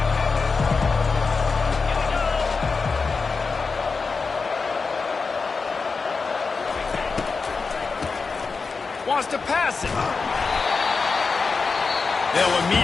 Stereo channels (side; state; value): right; quieter; 4.6 dB